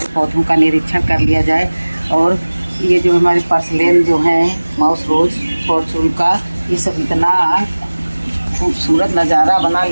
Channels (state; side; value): inverted; both; correlation -1.00